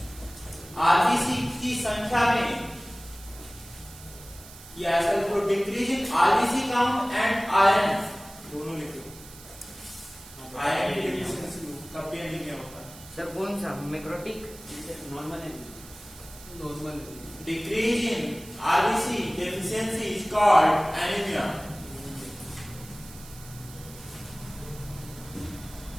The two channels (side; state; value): right; noise; hiss, 18 dB below the sound